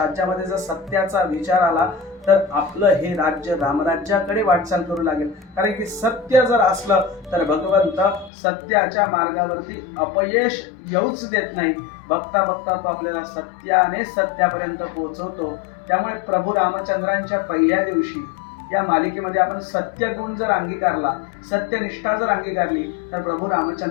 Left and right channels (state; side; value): drops out; right; at 8.3 s